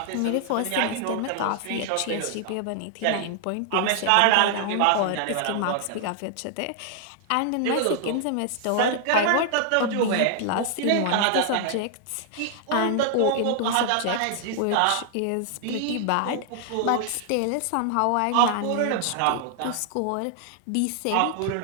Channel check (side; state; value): both; different; correlation 0.00